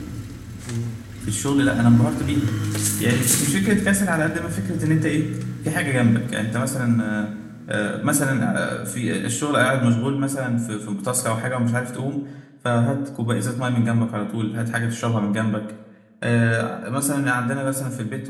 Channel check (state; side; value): identical; both; correlation 1.00